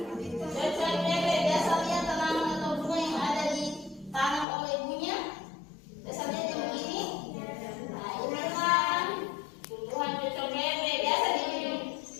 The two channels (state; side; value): drops out; right; at 4.5 s